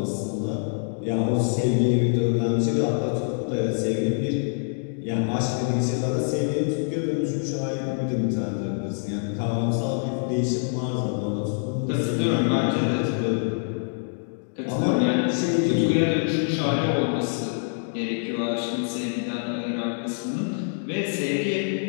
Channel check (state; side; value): silent; right; digital silence